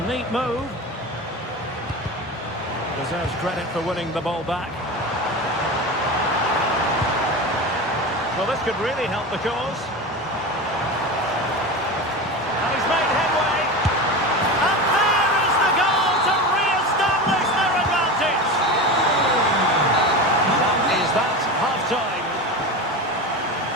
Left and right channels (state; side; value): normal; both; correlation 0.26